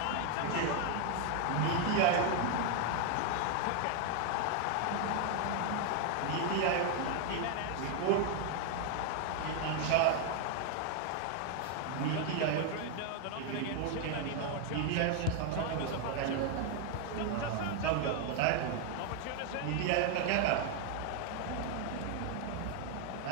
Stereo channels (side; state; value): both; different; correlation 0.00